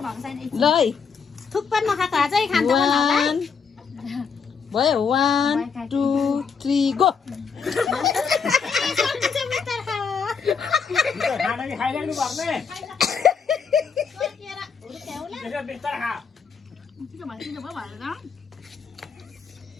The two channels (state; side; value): quieter; right; 5.9 dB